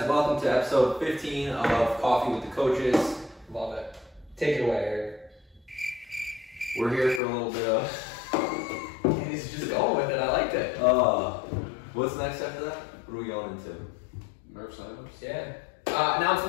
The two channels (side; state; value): right; drops out; at 7.2 s